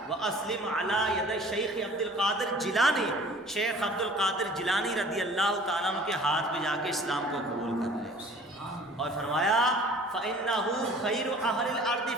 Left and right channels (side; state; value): both; normal; correlation 0.49